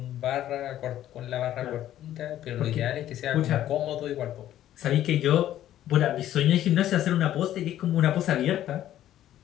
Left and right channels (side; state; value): right; quieter; 12.4 dB